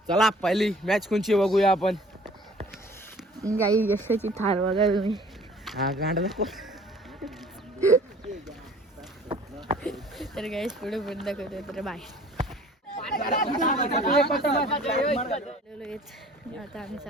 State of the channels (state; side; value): normal; both; correlation 0.50